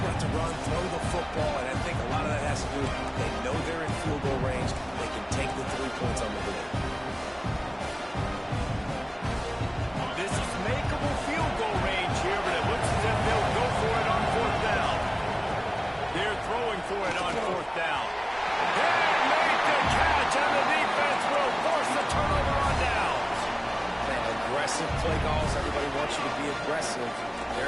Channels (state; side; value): identical; both; correlation 1.00